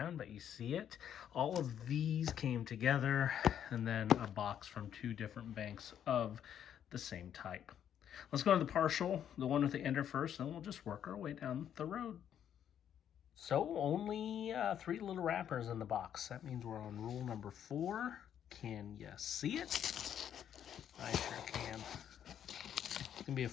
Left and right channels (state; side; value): quieter; right; 9.5 dB